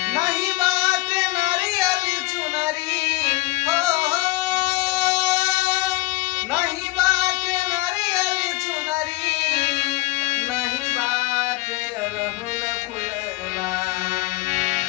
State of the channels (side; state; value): right; quieter; 20.6 dB